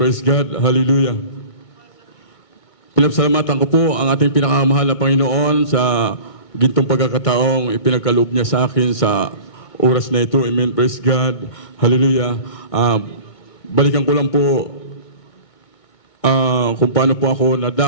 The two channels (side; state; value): right; late; 1.6 ms